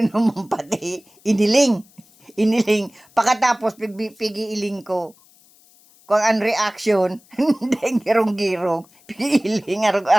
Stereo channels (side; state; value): left; noise; hiss, 29 dB below the sound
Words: pati. Iniling. Pagkatapos, pigiiling ko. Kung ang reaction, hindi girong-girong. Pigiiling,